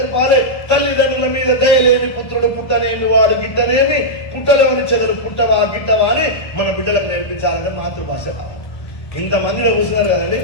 తల్లిదండ్రుల మీద దయలేని పుత్రుడు పుట్టనేమి, వాడు గిట్టనేమి, పుట్టలోని చెదలు పుట్టవా గిట్టవా అని మన బిడ్డలకు నేర్పించాలంటే మాతృభాష కావాలి. ఇంతమందిలో కూర్చున్నారు కదండి,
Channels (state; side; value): late; right; 1.2 ms